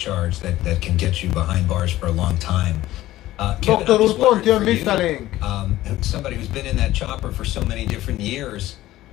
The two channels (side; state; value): right; quieter; 15.5 dB